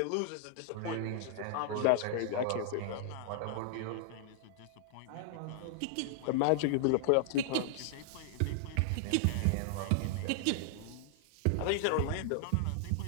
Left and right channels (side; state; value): both; different; correlation -0.01